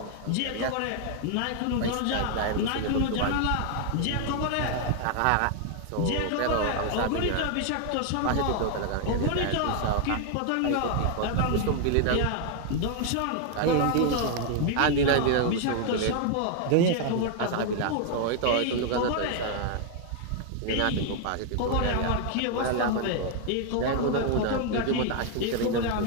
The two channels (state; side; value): different; both; correlation 0.00